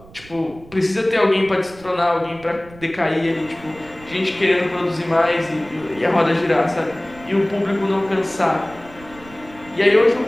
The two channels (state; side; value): noise; right; rumble, 21 dB below the sound